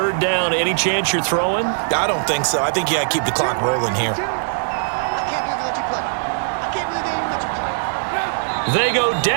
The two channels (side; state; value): left; silent; digital silence